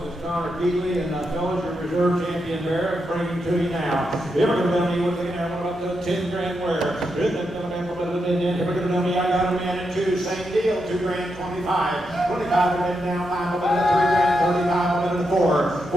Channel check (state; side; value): normal; both; correlation 0.84